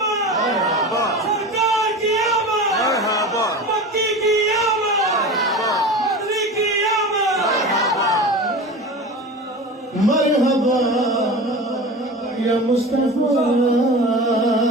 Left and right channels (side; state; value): both; normal; correlation 0.32